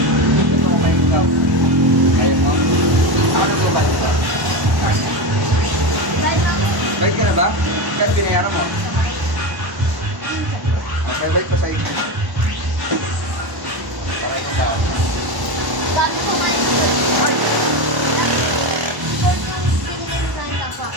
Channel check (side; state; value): left; late; 1.1 ms